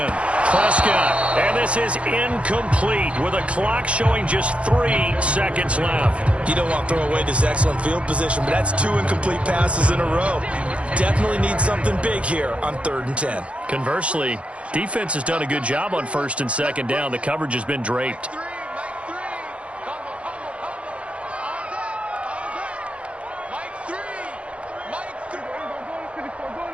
Prescott, and this is incomplete with a clock showing just 3 seconds left. You don't want to throw away this excellent field position, but that's 2 incomplete passes in a row. Definitely need something big here on 3rd and 10. Conversely, defense has done a good job on 1st and 2nd down. The coverage has been draped.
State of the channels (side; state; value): left; late; 0.061 ms